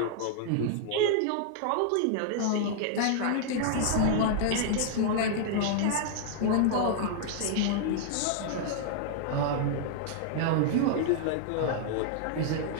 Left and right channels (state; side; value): different; both; correlation -0.01